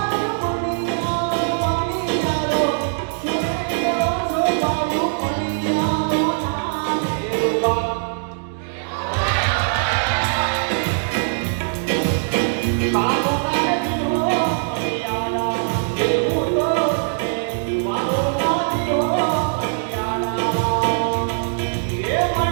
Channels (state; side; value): silent; left; 65 dB below the other